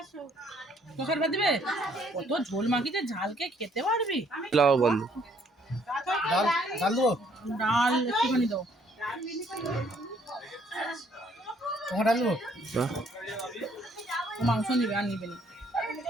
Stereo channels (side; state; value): both; normal; correlation 0.65